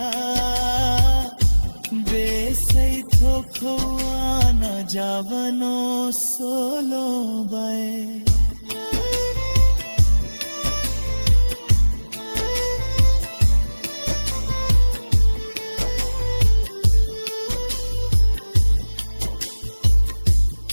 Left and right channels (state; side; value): inverted; both; correlation -1.00